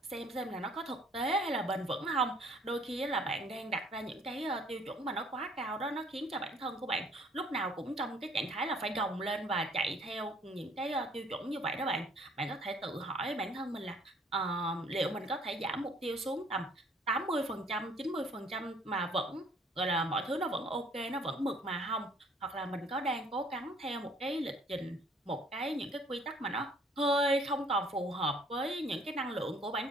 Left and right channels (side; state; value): both; normal; correlation 0.58